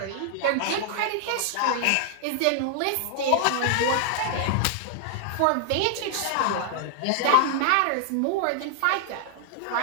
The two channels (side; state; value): both; different; correlation 0.00